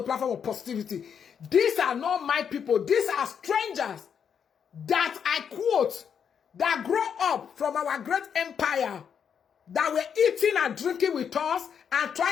of positivity. These are not my people. These are strangers that I quote, that grow up from our great empire, that were eating and drinking with us and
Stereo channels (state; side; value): quieter; right; 7.5 dB